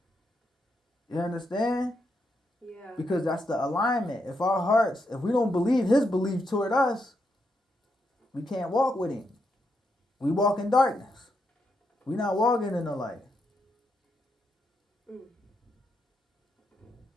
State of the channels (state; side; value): normal; both; correlation 0.81